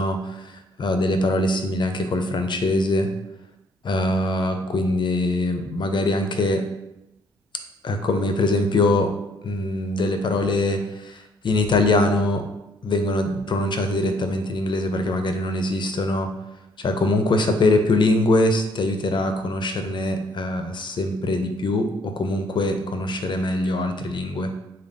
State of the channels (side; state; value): both; normal; correlation 0.65